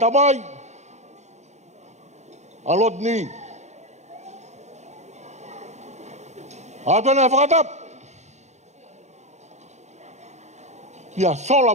tamai. A Rodney. A tōna e whakatap. Ia sola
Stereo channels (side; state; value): left; late; 0.33 ms